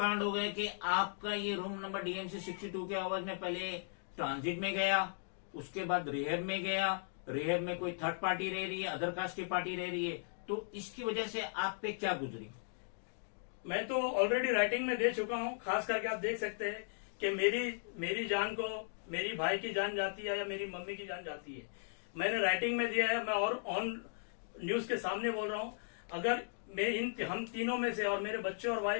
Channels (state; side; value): silent; right; digital silence